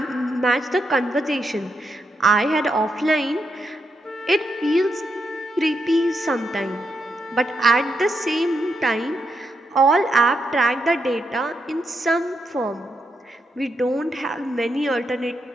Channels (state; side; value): normal; both; correlation 0.82